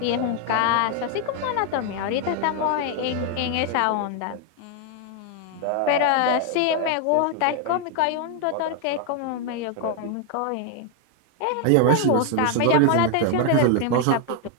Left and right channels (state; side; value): different; both; correlation 0.00